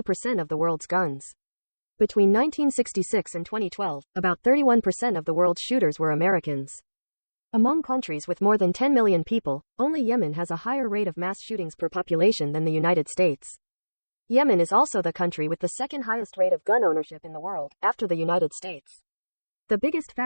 of the world's guns. Between 1966 and 2012, about 31% of the world's shooters were Americans. Among countries with more than 10 million people, only Yemen has a higher rate of mass shootings per population than the United States. Yemen is also the country with the second highest rate of gun ownership in the world, after the United States. The biggest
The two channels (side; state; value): both; inverted; correlation -1.00